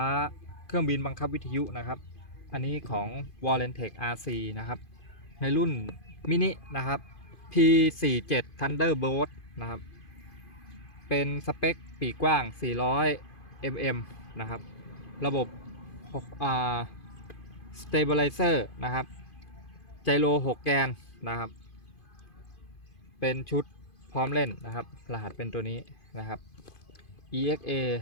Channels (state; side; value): late; right; 2.5 ms